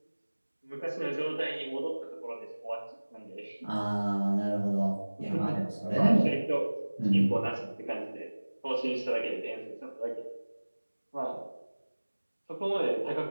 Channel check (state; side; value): inverted; both; correlation -1.00